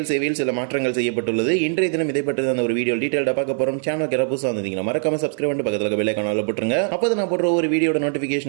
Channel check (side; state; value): left; silent; 55 dB below the other